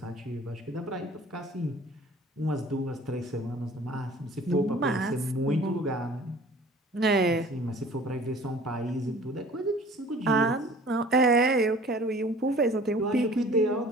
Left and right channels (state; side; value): normal; both; correlation 0.48